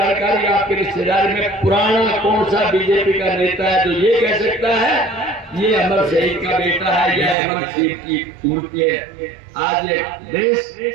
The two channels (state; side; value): drops out; left; at 7.4 s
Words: आपके रिश्तेदारी में पुराना कौन सा बीजेपी का नेता है जो ये कह सकता है ये अमर शहीद का बेटा है या अमर शहीद की मूर्ति है। आज ये देश